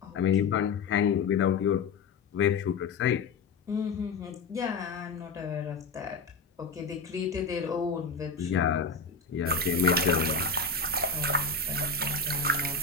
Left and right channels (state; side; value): quieter; right; 4.3 dB